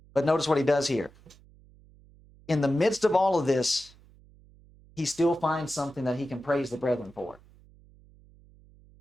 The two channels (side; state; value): right; noise; hum, 26 dB below the sound